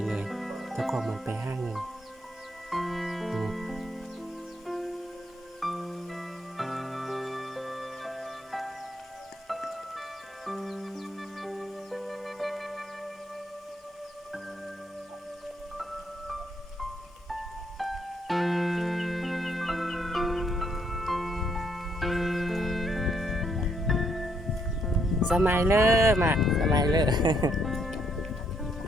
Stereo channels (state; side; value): normal; both; correlation 0.72